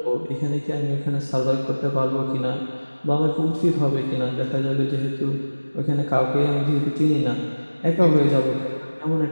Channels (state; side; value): inverted; both; correlation -1.00